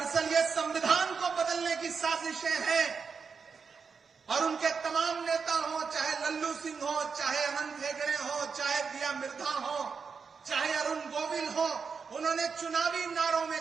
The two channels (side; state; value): left; quieter; 5.6 dB